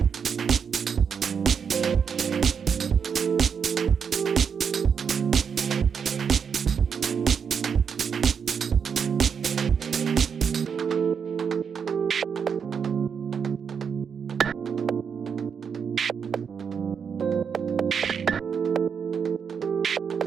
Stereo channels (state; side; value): quieter; left; 6.8 dB